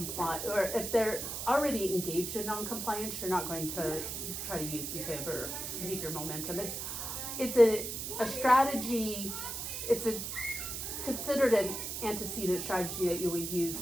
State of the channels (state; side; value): noise; right; hiss, 5 dB below the sound